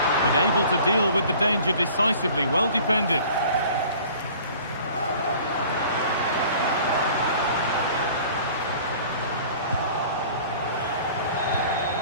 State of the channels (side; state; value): both; inverted; correlation -0.48